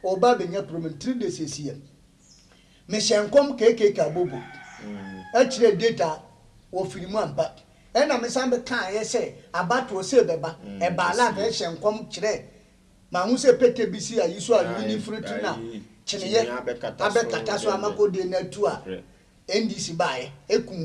oba benya problem 3 days esie me hye nkom keke ka bobo a kire data wo firimu ampa ena me sambe kan ye se abato se beba e ba la be hye nkom kire ma hu se pete bisi ayi so a ni fruit na chineye abekata so amakode na tu a NDC bae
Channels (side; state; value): both; identical; correlation 1.00